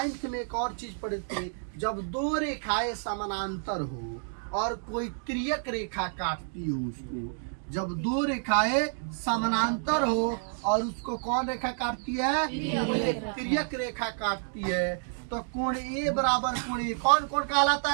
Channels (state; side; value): silent; left; digital silence